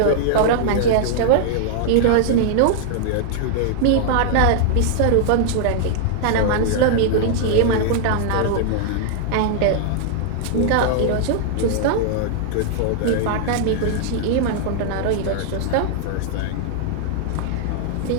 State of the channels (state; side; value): different; both; correlation -0.01